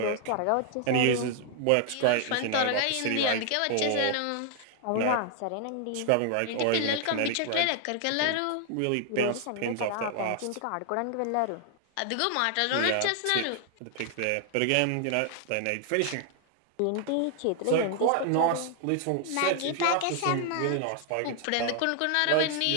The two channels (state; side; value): different; both; correlation 0.00